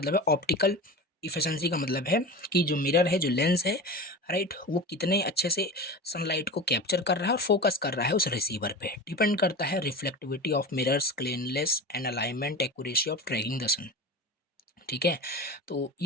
है ऑप्टिकल इफिशिएंसी का मतलब है कि जो मिरर है, जो लेंस है, राइट, वो कितने अच्छे से सनलाइट को कैप्चर कर रहा है और फोकस कर रहा है उस रिसीवर पे, डिपेंड करता है reflectivity of mirrors, cleanness and alignment, accuracy of tracking the sun, ठीक है। तो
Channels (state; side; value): normal; both; correlation 0.29